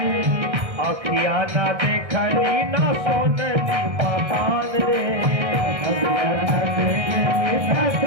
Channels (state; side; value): late; left; 1.6 ms